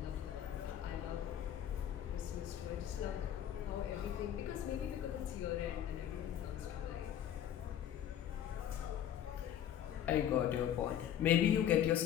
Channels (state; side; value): quieter; right; 10.4 dB